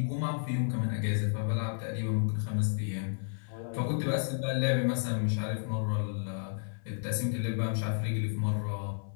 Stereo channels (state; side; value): silent; right; 56 dB below the other